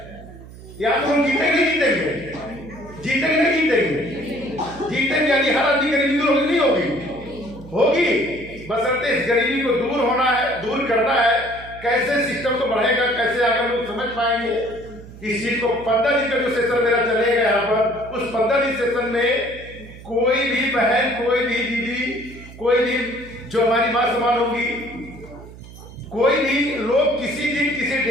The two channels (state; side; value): noise; right; hum, 17 dB below the sound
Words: या तो हम जीतेंगे नहीं जीतेंगे, जीतेंगे नहीं जीतेंगे, जीतेंगे यानी हर आदमी गरीबी दूर नहीं होगी, बशर्ते इस गरीबी को दूर होना है, दूर करना है। कैसे सिस्टम को बढ़ेगा, कैसे आगे लोग समझ पाएंगे इस चीज को। 15 दिन का जो सेशन मेरा चलेगा यहाँ पर, उस 15 दिन सेशन में कोई भी बहन, कोई भी दीदी, कोई भी जो हमारी मां समान होगी, कोई भी लोग किसी दिन किसी